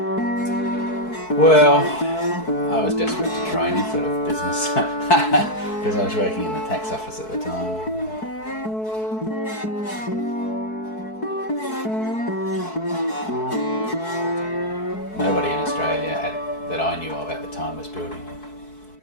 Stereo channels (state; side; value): late; right; 4.6 ms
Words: Well, I was desperate to try any sort of business because I was working in the tax office at the time. Nobody in Australia that I knew of at the time was building